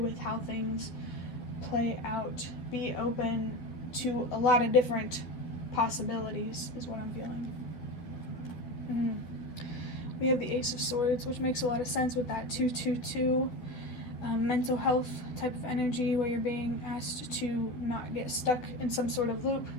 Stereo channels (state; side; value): late; right; 12 ms